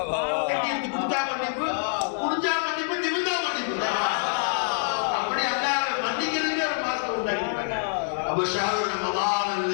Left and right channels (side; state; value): right; silent; digital silence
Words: கட்டி எடுத்து கொடுத்தா மன்னிப்பு, குடிஞ்சா மன்னிப்பு, நிமிந்தா அப்ப ஷஹ்ரு ரமதான்